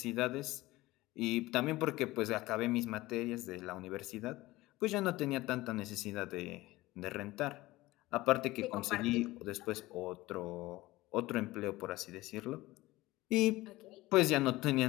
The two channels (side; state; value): right; quieter; 18.8 dB